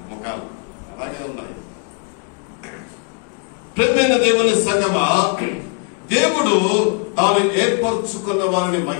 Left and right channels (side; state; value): right; quieter; 36.7 dB